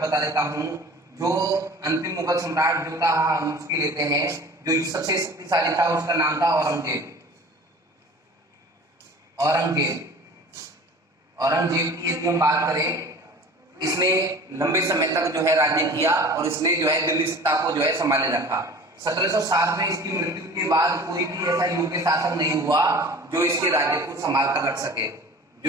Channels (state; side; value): normal; both; correlation 0.42